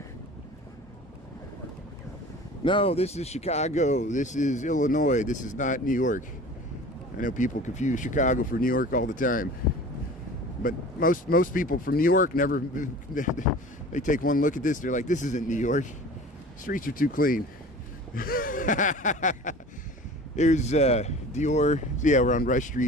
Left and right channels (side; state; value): both; normal; correlation 0.40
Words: No, this is Chicago. This is Illinois. This is not New York. I know people confuse Chicago for New York all the time. But most people from New York never, they take one look at this, they're like, this isn't New York. Streets are too clean. There's Dior. So yeah, we're on Rush